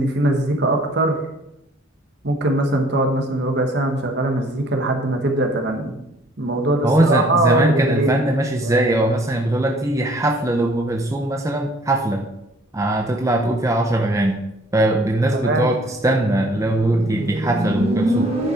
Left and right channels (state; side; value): normal; both; correlation 0.58